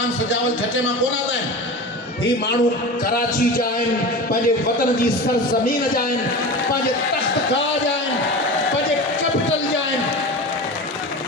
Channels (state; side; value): normal; both; correlation 0.30